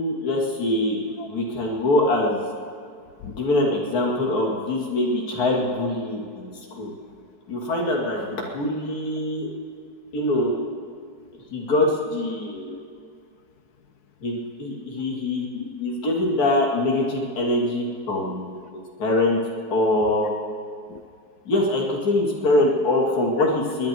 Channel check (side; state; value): right; late; 4.6 ms